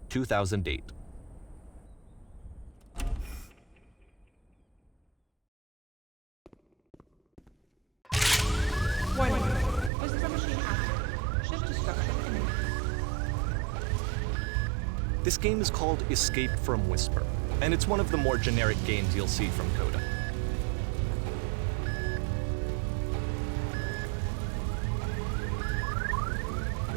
2008. Warning. Whisper machine active. Shift destruction imminent. This game is called Escape from Whisper, and it's one of the more generic games you'll see from Coda.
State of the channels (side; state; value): left; drops out; at 9.9 s